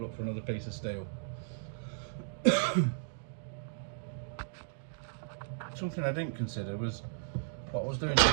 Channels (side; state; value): left; silent; digital silence